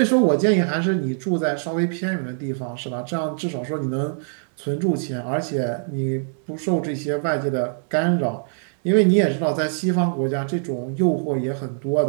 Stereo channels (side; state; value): left; silent; digital silence